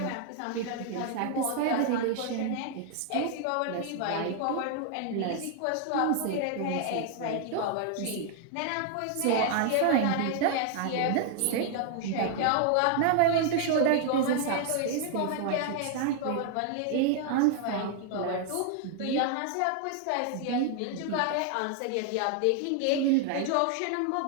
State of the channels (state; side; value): different; both; correlation 0.00